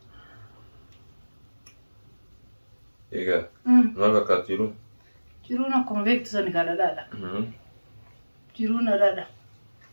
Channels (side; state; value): both; inverted; correlation -1.00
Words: إيه ما كاتيرو جرونا كم بيك تسني كذا لا جرونا لا